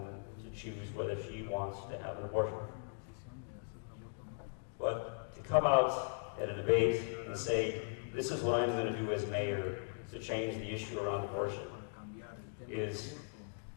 to choose whether she wants to have an abortion. But to come out at a debate and say, this is what I'm going to do as mayor to change the issue around abortion,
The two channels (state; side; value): silent; right; digital silence